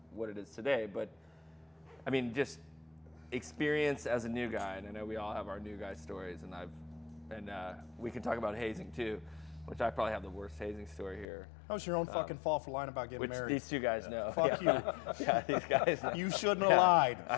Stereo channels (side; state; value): right; drops out; at 11.2 s